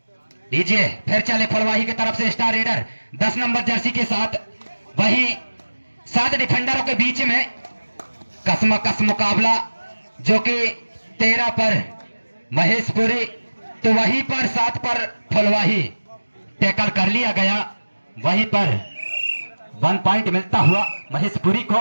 लीजिए फिर चले फुलवाही की तरफ से स्टार रेडर 10 नंबर जर्सी के साथ, वहीं 7 डिफेंडरों के बीच में कसम मुकाबला, जो कि 13 पर महेशपुरी तो वहीं पर 7 पर फुलवाही टैकल कर लिया गया। वहीं पर 1 पॉइंट मिलता हुआ महेशपुरी को।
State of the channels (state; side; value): inverted; both; correlation -1.00